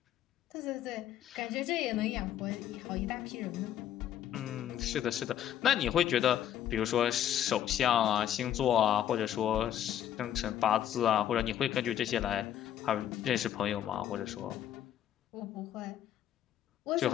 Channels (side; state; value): right; quieter; 10.7 dB